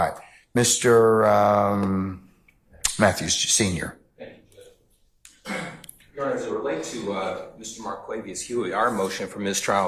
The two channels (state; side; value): identical; both; correlation 1.00